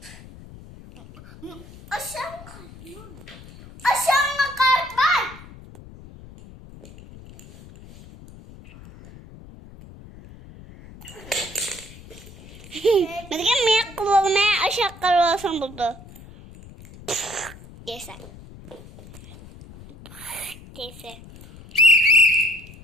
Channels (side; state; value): left; noise; rumble, 19 dB below the sound